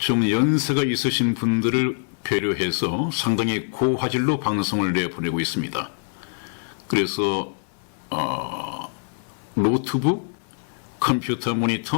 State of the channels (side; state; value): right; silent; 57 dB below the other